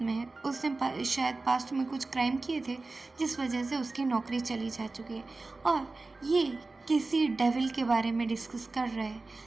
में है। उसने शायद पास्ट में कुछ क्राइम किए थे जिस वजह से उसकी नौकरी चली जा चुकी है और ये किसी डेविल के बारे में डिस्कस कर रहे हैं।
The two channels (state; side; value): quieter; left; 3.5 dB